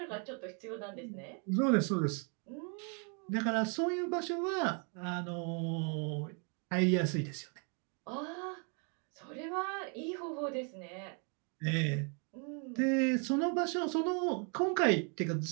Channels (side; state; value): left; quieter; 38.4 dB